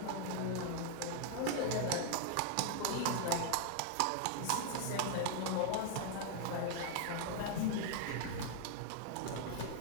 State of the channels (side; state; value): both; different; correlation 0.00